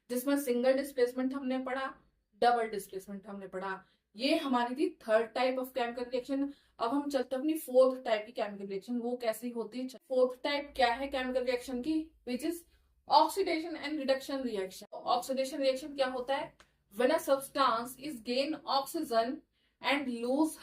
जिसमें सिंगल डिस्प्लेसमेंट हमने पढ़ा, डबल डिस्प्लेसमेंट हमने पढ़ा। ये हमारी थी third type of chemical reaction. अब हम चलते हैं अपनी फोर्थ टाइप की केमिकल रिएक्शन, वो कैसी होती है। फोर्थ टाइप क्या है केमिकल रिएक्शन की, which is oxidation and reduction reaction. Oxidation reaction क्या होता है, when a substance is gain oxygen and lose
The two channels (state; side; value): identical; both; correlation 1.00